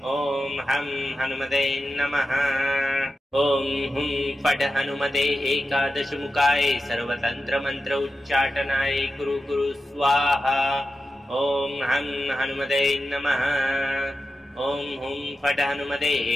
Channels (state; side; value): normal; both; correlation 0.91